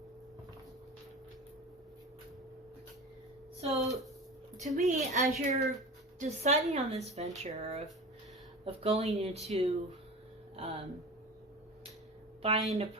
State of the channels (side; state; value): both; normal; correlation 0.32